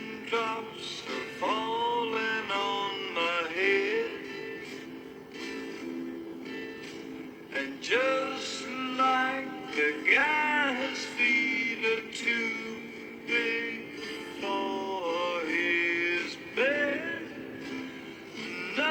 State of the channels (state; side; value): identical; both; correlation 1.00